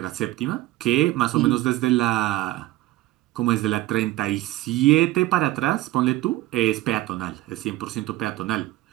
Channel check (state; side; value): quieter; left; 16.9 dB